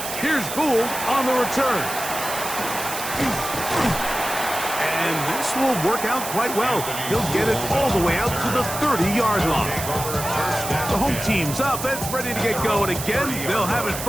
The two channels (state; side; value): noise; right; hiss, 7 dB below the sound